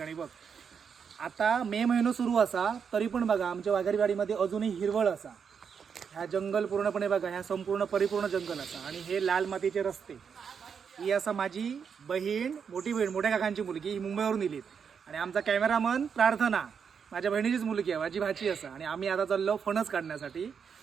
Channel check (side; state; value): left; quieter; 6.7 dB